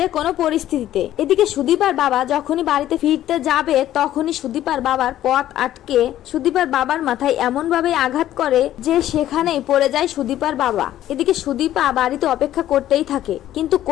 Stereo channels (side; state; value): right; quieter; 12.8 dB